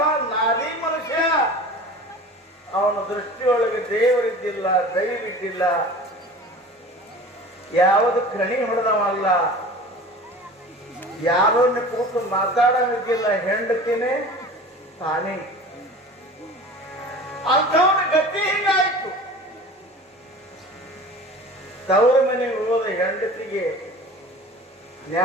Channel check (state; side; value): normal; both; correlation 0.39